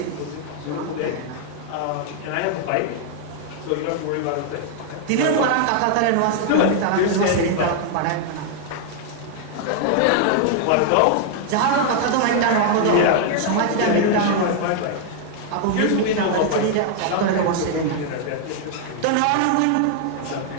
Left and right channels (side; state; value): both; different; correlation 0.00